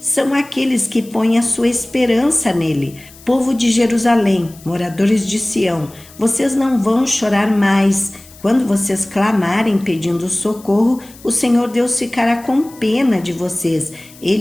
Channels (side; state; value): left; noise; hiss, 23 dB below the sound